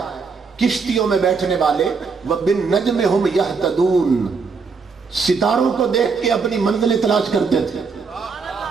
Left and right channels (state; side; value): quieter; left; 5.0 dB